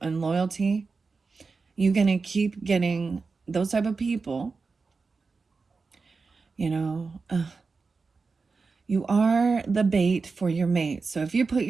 and loyalty. You're going to keep getting those type of people, you know, you are the bait for your mate. So if you put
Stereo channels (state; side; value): quieter; left; 4.4 dB